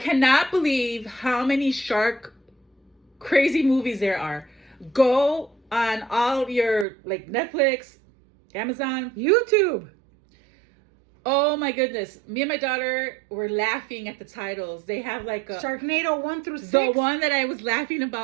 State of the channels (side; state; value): left; drops out; at 6.9 s